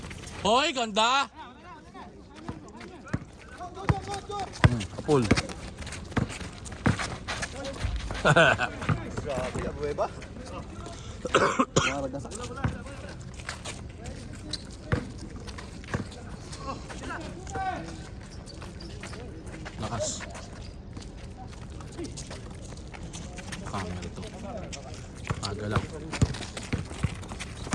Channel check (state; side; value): identical; both; correlation 1.00